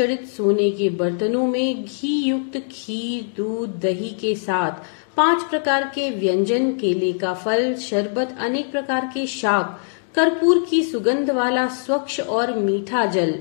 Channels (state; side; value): silent; right; digital silence